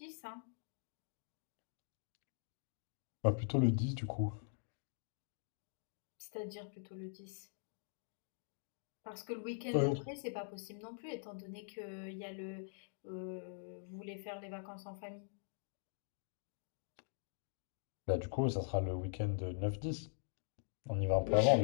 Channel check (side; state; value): right; silent; digital silence